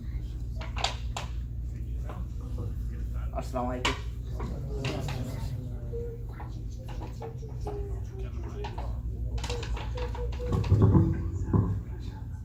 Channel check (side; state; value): both; identical; correlation 1.00